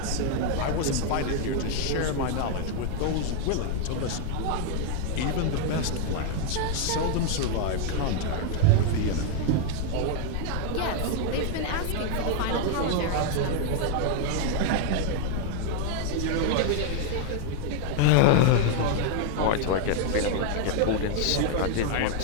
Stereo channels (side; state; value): both; different; correlation 0.00